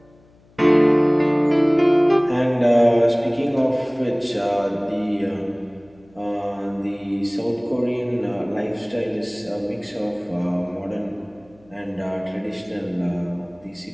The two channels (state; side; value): noise; left; hum, 30 dB below the sound